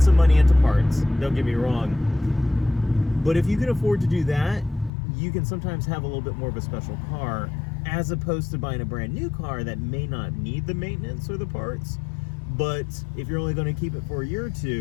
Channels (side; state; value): right; drops out; at 4.9 s